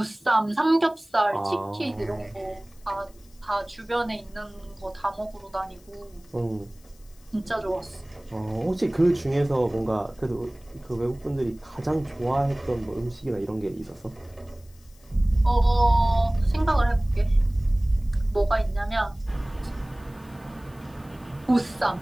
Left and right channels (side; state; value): left; noise; hiss, 28 dB below the sound